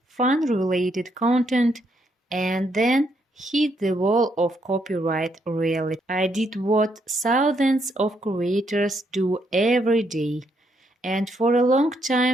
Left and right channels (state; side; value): normal; both; correlation 0.75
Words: fun-related content, and then hit the wall of copyright reality. I did what thousands of creators do every day, and for a long